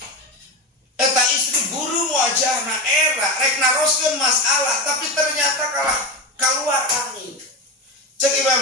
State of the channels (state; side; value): normal; both; correlation 0.19